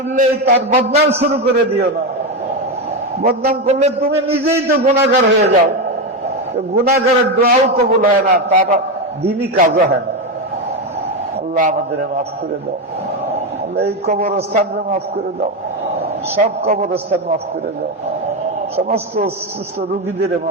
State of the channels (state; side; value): normal; both; correlation 0.11